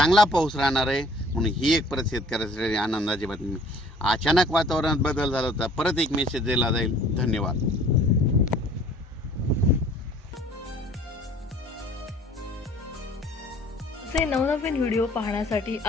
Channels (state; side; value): normal; both; correlation 0.54